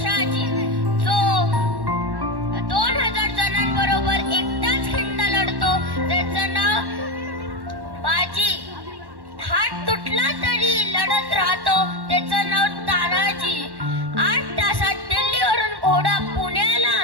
जो 2000 जणांबरोबर एकटाच खिंड लढतो त्याचं नाव बाजी. हात तुटला तरी लढत राहतो त्याचं नाव तानाजी. 8 तासात दिल्लीवरून घोडा पुण्याला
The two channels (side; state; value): left; late; 1.1 ms